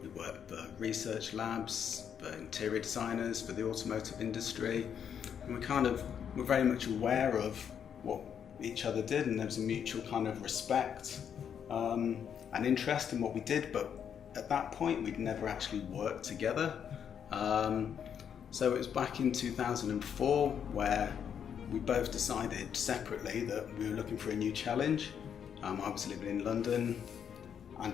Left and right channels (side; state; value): right; quieter; 8.1 dB